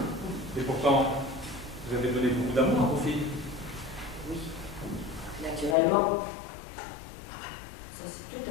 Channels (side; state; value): right; drops out; at 5.8 s